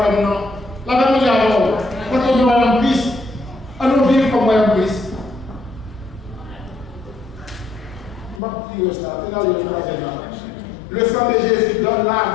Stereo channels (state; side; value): drops out; right; at 8.4 s